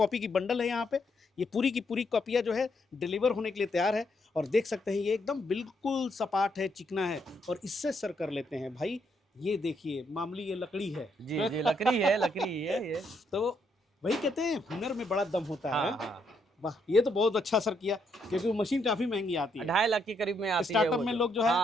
की बंडल है यहाँ पे, ये पूरी की पूरी कॉपियाँ जो है डिलीवर होने के लिए तैयार है। और देख सकते हैं ये एकदम बिल्कुल सपाट है, चिकना है, और इससे सर कर लेते हैं भाई। ये देखिए मामूली ये लकड़ी है। जी जी, लकड़ी है, लकड़ी है ये। तो वही कहते हैं हुनर में बड़ा दम होता है। हाँ। वाह, ये तो बहुत अच्छा सर किया, क्योंकि वो मशीन काफी महंगी आती है, 2.5 लाख के करीब में आती है। स्टार्टअप में लोग जो है।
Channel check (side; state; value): both; normal; correlation 0.75